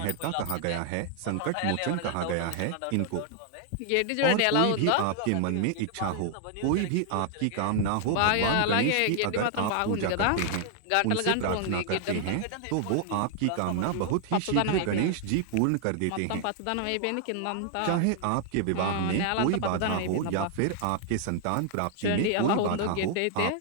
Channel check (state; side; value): different; both; correlation 0.00